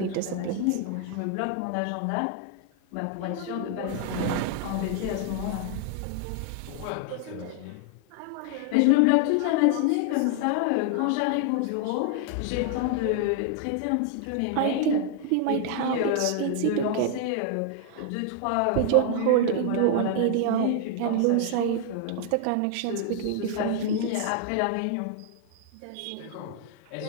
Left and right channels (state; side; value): different; both; correlation 0.00